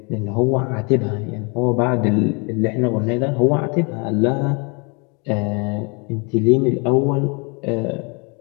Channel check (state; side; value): quieter; right; 32.7 dB